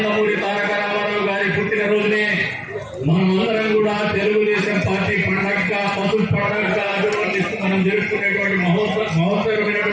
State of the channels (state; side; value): identical; both; correlation 1.00